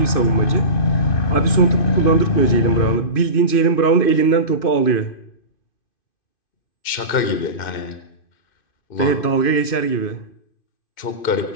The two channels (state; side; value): late; right; 2.5 ms